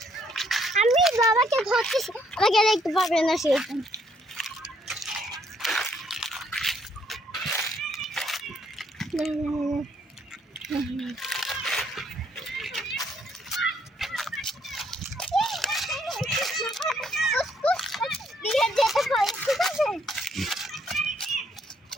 আমি বাবাকে ধরতেছি, আমাকে দেখতে পাবে না সেরকম।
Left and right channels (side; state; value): both; normal; correlation 0.69